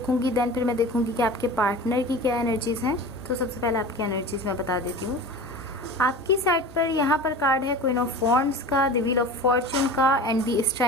देन फिर मैं देखूंगी कि आपके पार्टनर की क्या एनर्जीज हैं। तो सबसे पहले आपकी एनर्जीज मैं बता देती हूँ। आपकी साइड पर यहाँ पर कार्ड है क्वीन ऑफ वॉन्ड्स का, द व्हील ऑफ फॉर्च्यून का एंड द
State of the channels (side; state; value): left; noise; hum, 25 dB below the sound